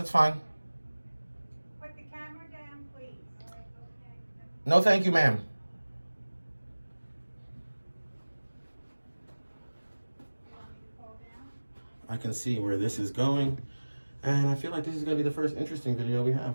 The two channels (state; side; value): inverted; both; correlation -1.00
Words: fine. Put the camera down, please. All right, okay. No, thank you, ma'am. You want me to fall down? I can see where this is going, and I feel like this is gonna be the first interesting video we